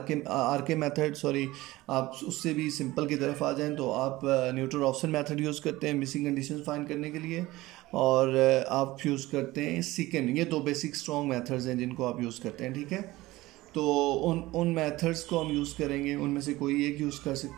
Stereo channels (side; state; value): left; quieter; 18.6 dB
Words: के मेथड, सॉरी, आप उससे भी सिंपल की तरफ आ जाएं तो आप न्यूटन रॉफ्सन मेथड यूज़ करते हैं मिसिंग कंडीशन फाइंड करने के लिए, और आप यूज़ करते हैं सीकेंड। ये दो बेसिक स्ट्रॉन्ग मेथड्स हैं जिनको आप यूज़ करते हैं। ठीक है। तो उन मेथड्स को हम यूज़ करेंगे, उनमें से कोई एक यूज़ कर